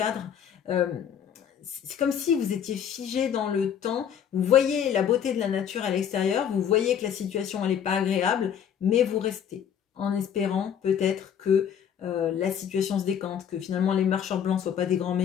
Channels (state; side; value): quieter; right; 8.7 dB